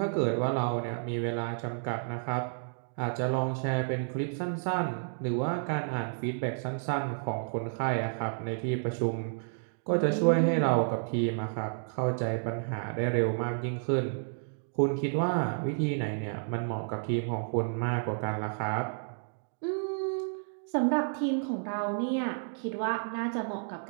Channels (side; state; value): left; silent; digital silence